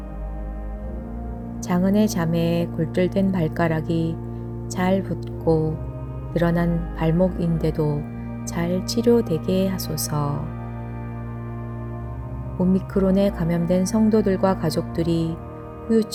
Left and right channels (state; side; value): identical; both; correlation 1.00